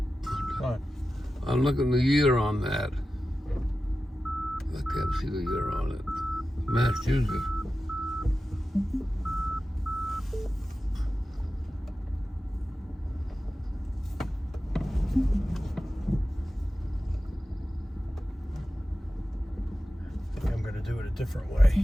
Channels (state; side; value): normal; both; correlation 0.93